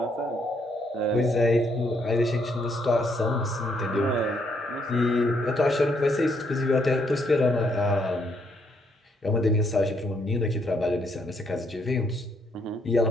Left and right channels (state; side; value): normal; both; correlation 0.72